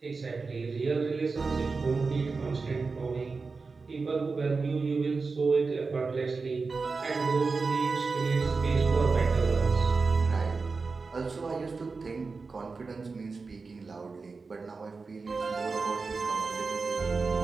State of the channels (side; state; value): left; quieter; 4.3 dB